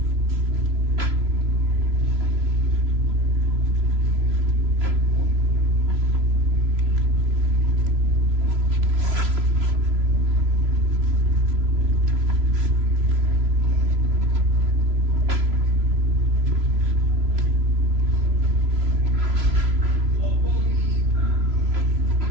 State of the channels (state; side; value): late; left; 3.0 ms